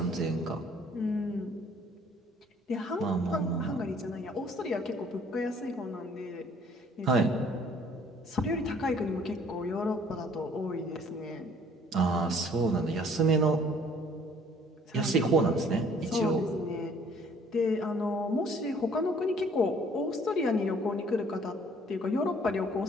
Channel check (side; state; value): both; normal; correlation 0.58